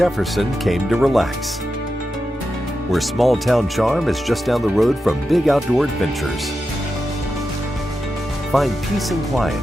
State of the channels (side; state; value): both; normal; correlation 0.90